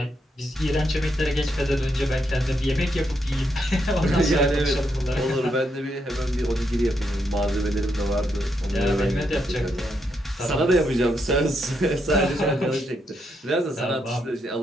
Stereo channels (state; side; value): normal; both; correlation 0.79